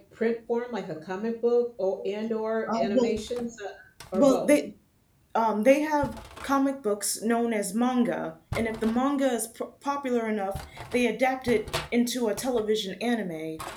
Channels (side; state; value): both; identical; correlation 1.00